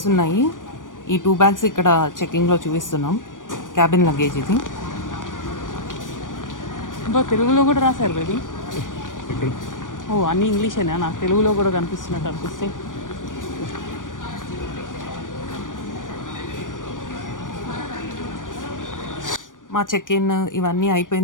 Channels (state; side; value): late; right; 0.88 ms